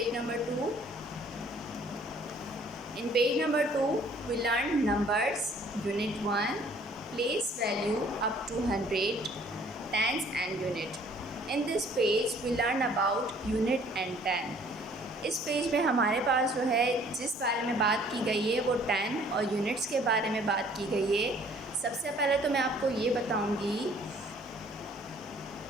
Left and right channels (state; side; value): normal; both; correlation 0.57